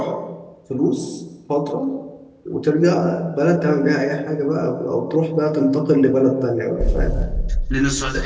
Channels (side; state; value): both; identical; correlation 1.00